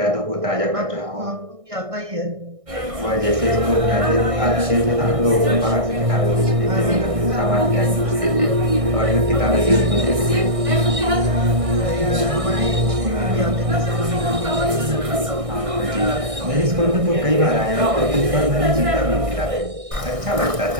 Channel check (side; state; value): left; late; 1.6 ms